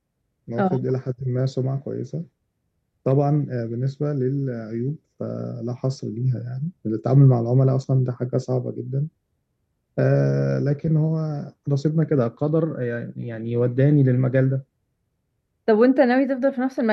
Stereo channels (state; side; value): identical; both; correlation 1.00